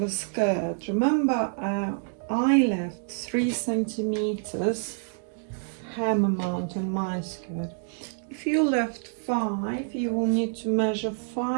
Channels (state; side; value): silent; left; digital silence